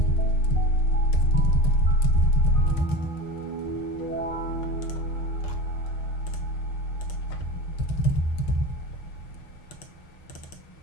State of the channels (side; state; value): right; late; 6.5 ms